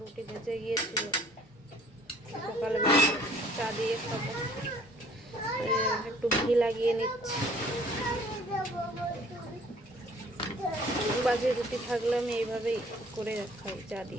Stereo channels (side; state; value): both; normal; correlation 0.56